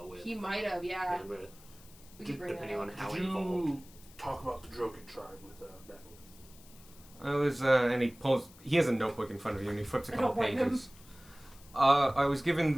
with He might have, yeah. with We could bring that depending on up. how Did involved. you talk about the Droken tribe with Battle? I was, and he has a notebook in front of you, and he flips a I couple don't blame him. pages. I was given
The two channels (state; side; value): noise; left; hiss, 23 dB below the sound